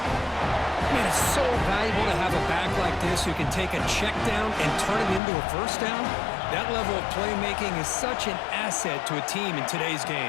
Man, it's so valuable to have a back like this who can take a check down and turn it into a 1st down. That level of playmaking is such an asset to a team in today's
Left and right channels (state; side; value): drops out; right; at 5.2 s